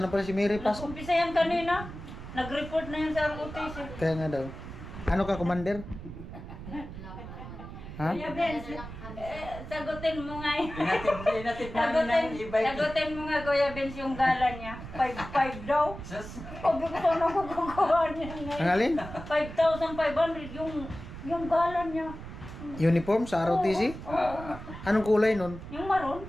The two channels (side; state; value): right; noise; rumble, 11 dB below the sound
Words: pala si Mary Pasok. Nag-umpisa yan kanina. Nag-report na yan sa ROTC. Kaya nga daw. Ano ka, commander? Ha? Kuya Benz, sagutin mo nga yun. Inatid namin ng e-bike. Sagutin mo nga Kuya Benz yung gala niya. 5,500 daw. Sus. Sabi ko sana magkukuha niya Ang ngayon. alin? 5,500 yung gala niya. Uniform sa ROTC? Ah, Anong kulay nun? Yung maroon.